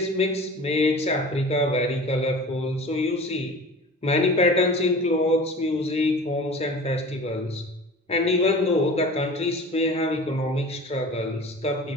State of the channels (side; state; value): both; normal; correlation 0.39